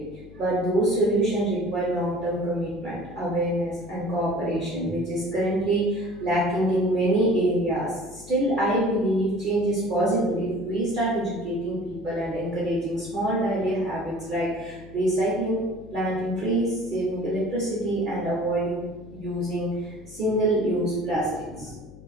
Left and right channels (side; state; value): left; noise; hum, 19 dB below the sound